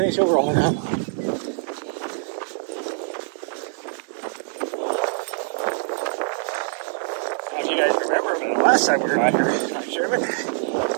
she'll roll around on. Now, if you guys remember, the last time we were out here, I'm Sherman,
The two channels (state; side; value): silent; left; digital silence